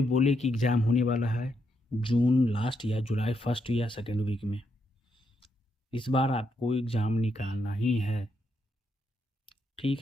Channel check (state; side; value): normal; both; correlation 0.79